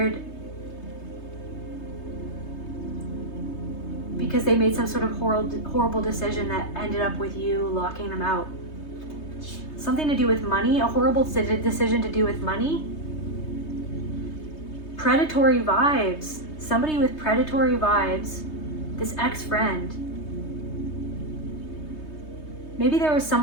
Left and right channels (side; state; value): right; late; 3.2 ms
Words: because they made some sort of horrible decision that ended up with you locking them out. Something to do with money, a horrible decision to do with money. Predatory vibes. Somebody with predatory vibes. This ex-friend. Maybe there was